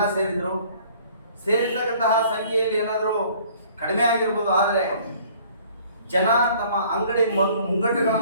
ಸೇರಿದ್ರು. ಸೇರಿರ್ತಕ್ಕಂತಹ ಸಂಖ್ಯೆಯಲ್ಲಿ ಏನಾದರೂ ಕಡಿಮೆ ಆಗಿರ್ಬೋದು, ಆದರೆ ಜನ ತಮ್ಮ ಅಂಗಡಿ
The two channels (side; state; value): both; inverted; correlation -0.54